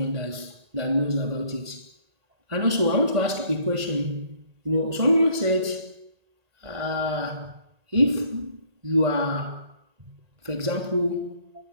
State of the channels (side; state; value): left; late; 1.8 ms